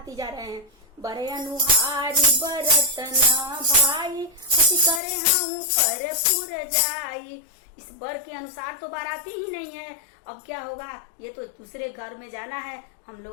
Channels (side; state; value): right; drops out; at 5.0 s